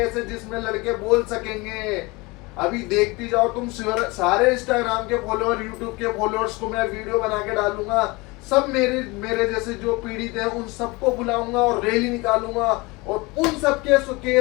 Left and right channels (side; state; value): right; quieter; 24.6 dB